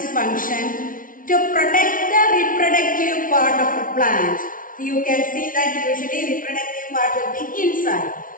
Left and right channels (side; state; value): right; late; 0.39 ms